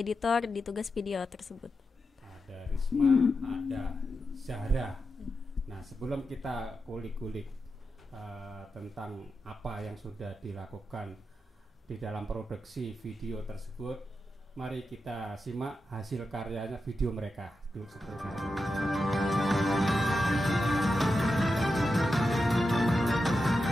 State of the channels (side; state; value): both; normal; correlation 0.89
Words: di tugas video tersebut. Ada Risma, ada Zahra. Nah, sebelum kita kulik-kulik tentang apa yang sudah dilakukan di dalam produksi video tersebut, mari kita simak hasil karyanya video mereka dulu seperti ini.